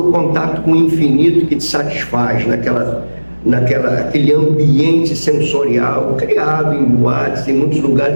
contato com o infinito que te satisfaz, naquele ambiente sensorial criado em boates, em muitos lugares.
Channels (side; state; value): both; inverted; correlation -1.00